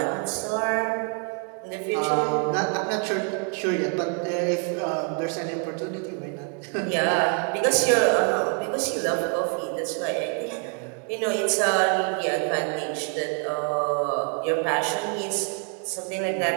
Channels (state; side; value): quieter; left; 39.8 dB